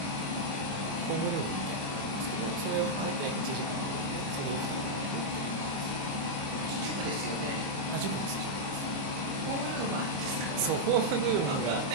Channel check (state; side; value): late; left; 25 ms